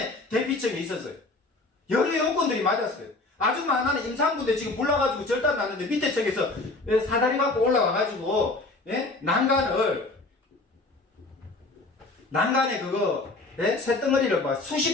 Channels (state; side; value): quieter; right; 3.2 dB